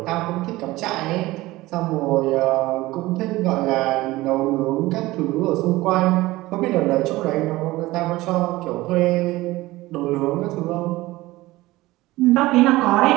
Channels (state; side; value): quieter; left; 18.7 dB